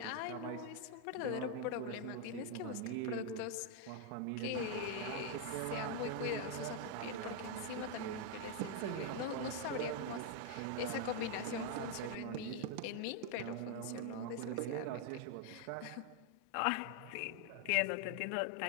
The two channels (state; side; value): different; both; correlation 0.00